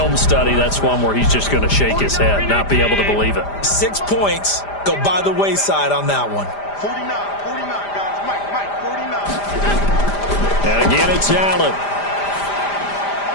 study, that's one where he's just going to shake his head, not be able to believe it. 6 points go by the wayside on that one. 49, guys. Mike, 49. And again, it's Allen.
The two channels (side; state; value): right; late; 5.0 ms